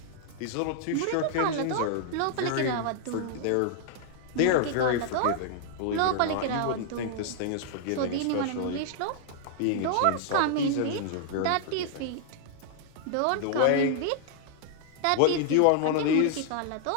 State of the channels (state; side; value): different; both; correlation -0.01